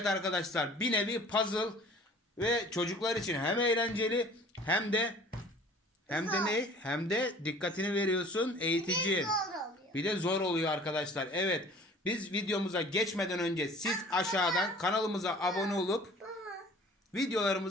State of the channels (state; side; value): normal; both; correlation 0.49